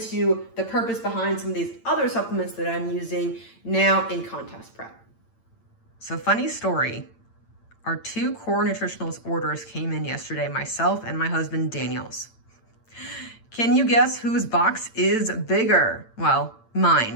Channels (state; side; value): late; right; 8.8 ms